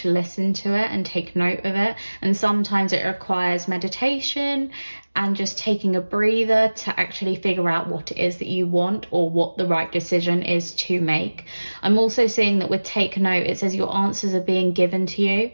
listen to it and take note of it. And sometimes it requires meditation and just taking a breather to actually figure out what it is that you want or what the right decision is to make. I'm also seeing that with take note, it says your answers are being given to you.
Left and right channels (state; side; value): inverted; both; correlation -1.00